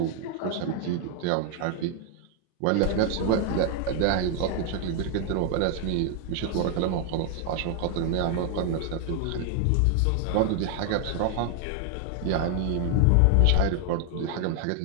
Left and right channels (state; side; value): different; both; correlation 0.00